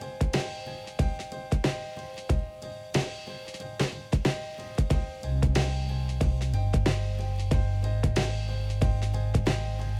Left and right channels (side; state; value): both; identical; correlation 1.00